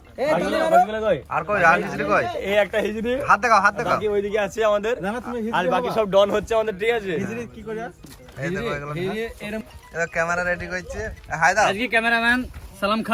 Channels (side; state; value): both; identical; correlation 1.00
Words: আর কই আর হিজরি কই এই একটা হিজরি হাত দেখাও বাকি ওইদিকে আছে আমাদের আর বাকি সব ডন হচ্ছে আমাদের ঠিক আছে হিজড়ি কি করে এই দেখো এগুলো এরকম ক্যামেরা রেডি করছে হাই দাও আজকে ক্যামেরাম্যান সালাম